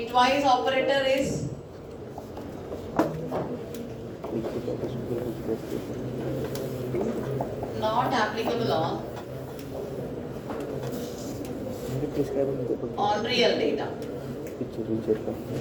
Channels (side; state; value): both; identical; correlation 1.00